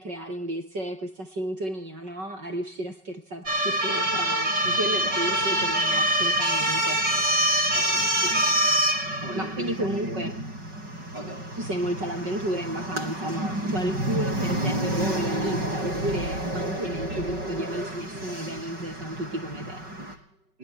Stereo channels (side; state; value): left; late; 5.3 ms